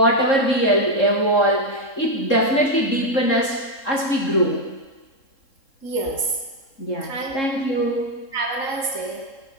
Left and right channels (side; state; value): right; late; 3.7 ms